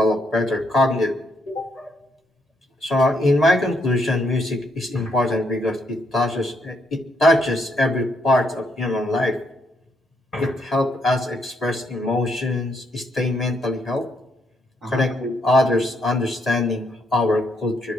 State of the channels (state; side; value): normal; both; correlation 0.75